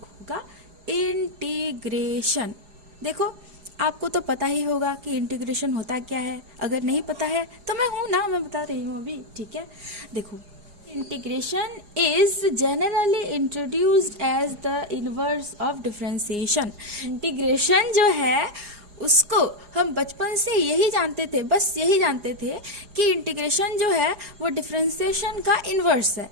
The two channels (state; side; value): late; left; 4.8 ms